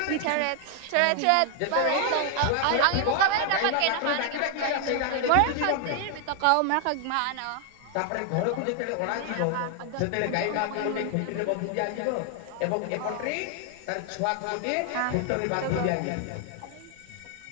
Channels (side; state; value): both; different; correlation 0.00